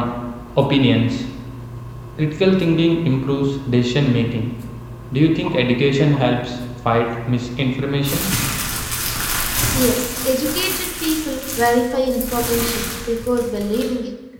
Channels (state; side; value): identical; both; correlation 1.00